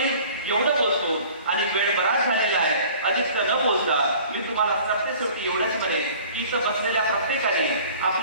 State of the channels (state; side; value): inverted; both; correlation -0.48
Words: एवढं बोलतो आणि वेळ बराच झालेला आहे, अधिक न बोलता मी तुम्हाला सरतेशेवटी एवढंच म्हणेन की इथं बसलेल्या प्रत्येकाने